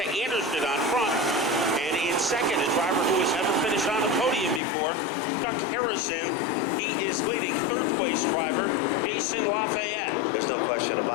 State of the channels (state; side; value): drops out; right; at 4.6 s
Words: Anderson on front. And in second, a driver who has never finished on the podium before, Chuck Harrison. He is leading. Third place driver, Jason Lafayette. There's no question